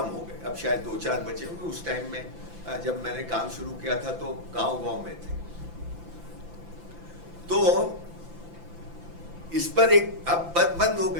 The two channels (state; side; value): late; left; 5.9 ms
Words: हो गए, अब शायद 2-4 बचे होंगे। उस टाइम में जब मैंने काम शुरू किया था तो गांव-गांव में थे। तो इस पर एक अब बंद हो